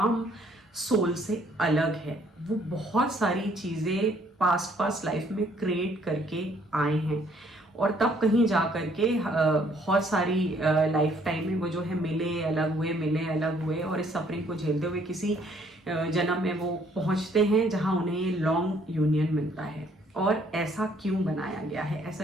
सोल से अलग है। वो बहुत सारी चीज़ें पास्ट लाइफ में क्रिएट करके आए हैं और तब कहीं जा करके बहुत सारी लाइफ टाइम में वो जो है मिले अलग हुए और इस सफरिंग को झेलते हुए किसी जन्म में वो पहुंचते हैं जहां उन्हें लॉन्ग यूनियन मिलता है। और ऐसा क्यों बनाया गया है?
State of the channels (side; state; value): both; normal; correlation 0.64